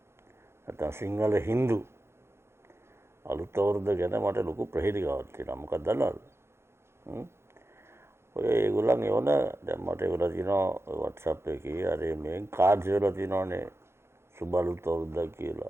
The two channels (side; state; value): left; late; 0.12 ms